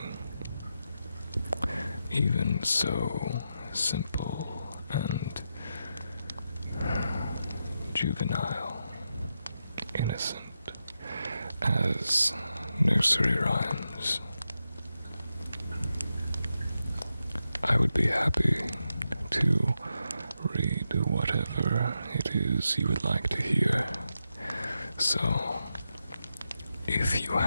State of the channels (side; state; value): both; inverted; correlation -0.87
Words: even so simple and juvenile innocent as nursery rhymes. I would be happy to read whatever it is you would like to hear. So, if you